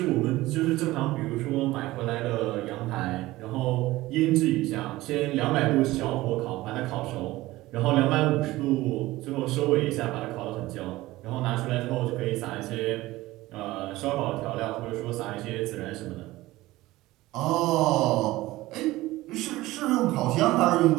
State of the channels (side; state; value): left; quieter; 18.0 dB